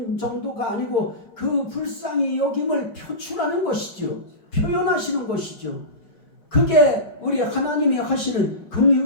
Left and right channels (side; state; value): right; late; 5.3 ms